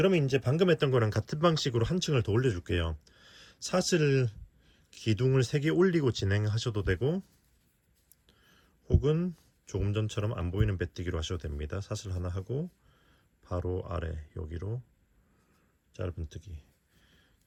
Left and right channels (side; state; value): both; identical; correlation 1.00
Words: 이제 방금 했던 거랑 같은 방식으로 한 층을 더 올려줄게요. 사슬 기둥을 3개 올리고 진행하셔도 되고, 혹은 조금 전처럼 안 보이는 빼뜨기로 하셔도 됩니다. 사슬 하나 하고 바로 아래 여기로 짧은뜨기.